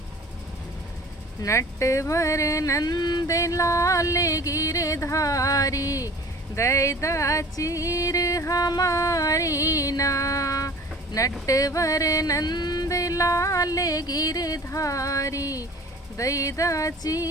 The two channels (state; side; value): normal; both; correlation 0.45